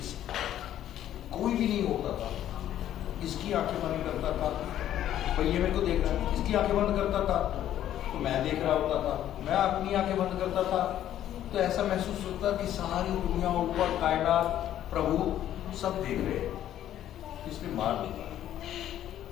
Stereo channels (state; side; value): quieter; right; 11.7 dB